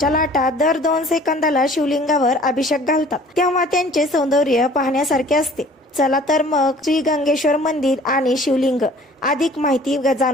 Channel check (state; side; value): normal; both; correlation 0.51